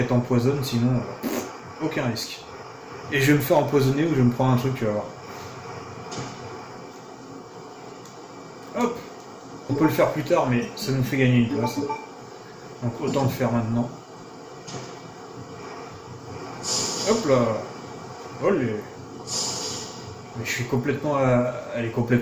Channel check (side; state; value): both; identical; correlation 1.00